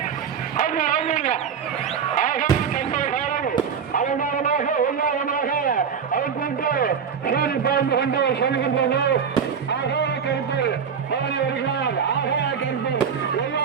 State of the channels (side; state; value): left; quieter; 6.9 dB